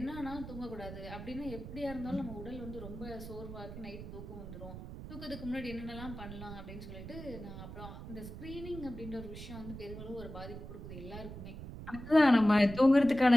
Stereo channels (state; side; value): noise; right; rumble, 11 dB below the sound